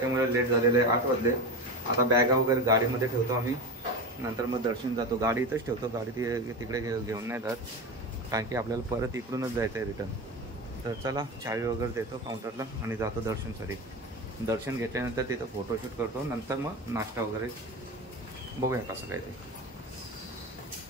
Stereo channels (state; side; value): normal; both; correlation 0.24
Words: लेट झालेलं आहे. 8 वाजले. आता बॅगा वगैरे गाडीमध्ये ठेवतो आम्ही, नंतर मग दर्शन जातो. गाडी इथंच ठेवतो, गाडी तिकडे घेऊन नाही जात, कारण की आपल्याला परत इकडूनच जायचं आहे रिटर्न. तर चला, चावी वगैरे देतो काउंटरला आणि जातो दर्शनसाठी. दर्शन घेतल्यानंतर तिथं फोटोशूट करतो, नंतर मग नाश्ता वगैरे बघूया कसं काय ते.